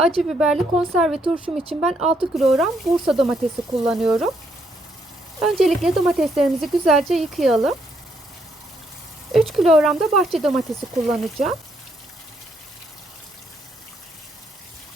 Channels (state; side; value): normal; both; correlation 0.73